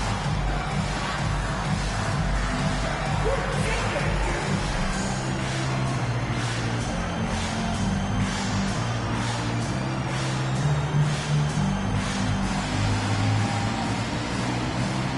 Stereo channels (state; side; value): identical; both; correlation 1.00